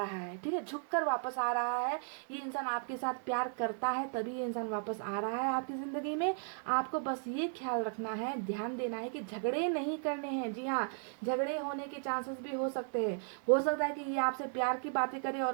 है, ठीक है, झुककर वापस आ रहा है। ये इंसान आपके साथ प्यार करता है, तभी ये इंसान वापस आ रहा है आपकी ज़िंदगी में। आपको बस ये ख्याल रखना है, ध्यान देना है कि झगड़े नहीं करने हैं। जी हाँ, झगड़े होने के चांसेस भी हो सकते हैं। हो सकता है कि ये आपसे प्यार की बातें करे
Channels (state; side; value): silent; left; 54 dB below the other